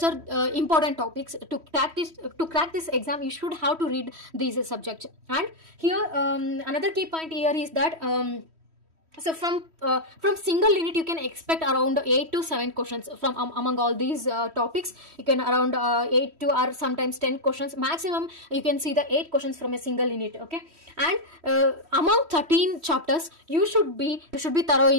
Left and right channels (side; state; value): left; late; 3.1 ms